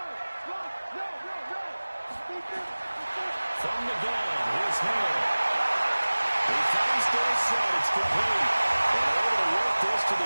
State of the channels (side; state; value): both; inverted; correlation -1.00